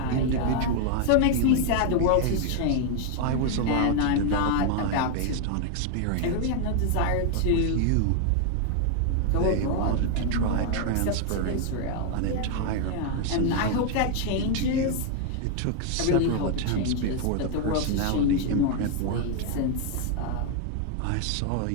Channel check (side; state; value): both; different; correlation 0.00